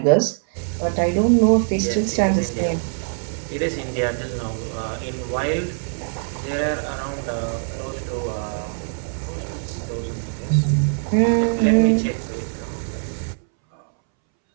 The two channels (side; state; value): left; silent; 63 dB below the other